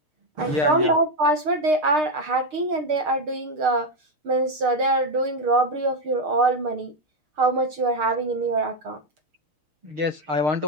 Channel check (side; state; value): left; late; 6.5 ms